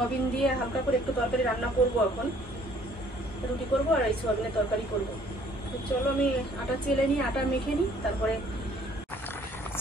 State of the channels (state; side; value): normal; both; correlation 0.59